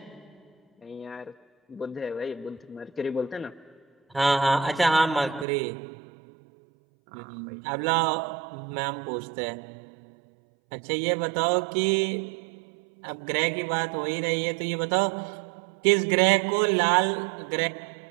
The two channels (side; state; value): left; drops out; at 5.5 s